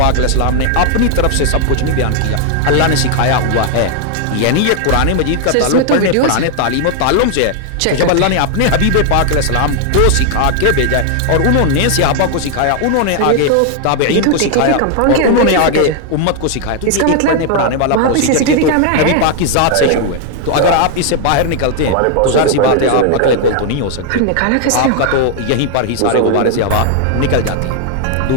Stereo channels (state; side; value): different; both; correlation 0.00